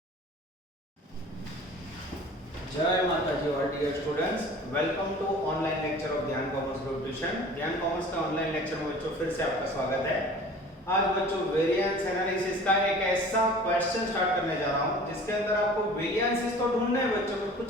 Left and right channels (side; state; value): both; normal; correlation 0.44